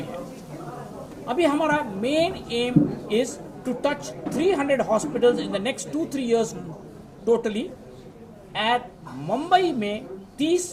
है। अभी हमारा main aim is to touch 300 hospitals in the next 2-3 years totally. At Mumbai में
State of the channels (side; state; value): both; identical; correlation 1.00